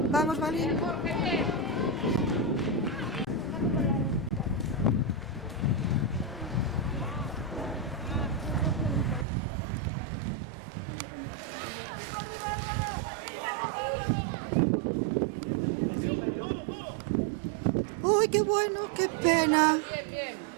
Vamos, Balín. Uy, qué bueno, qué pena.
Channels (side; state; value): left; drops out; at 9.2 s